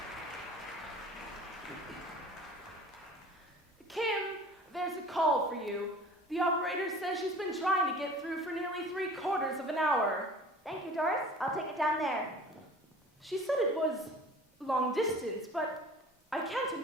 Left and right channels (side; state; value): both; normal; correlation 0.44